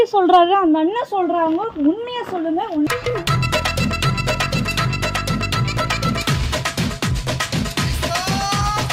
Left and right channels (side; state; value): both; identical; correlation 1.00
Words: சொல்றாரு, அந்த அண்ணன் சொல்றாங்க, உண்மையா சொல்லுங்க.